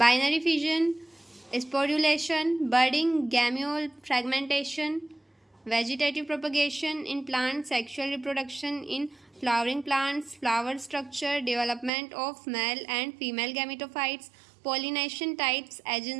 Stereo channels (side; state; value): left; drops out; at 11.9 s